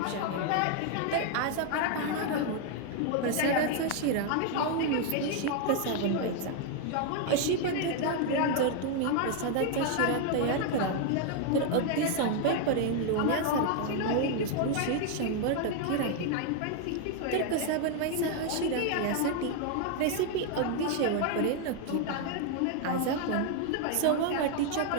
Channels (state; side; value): different; both; correlation 0.00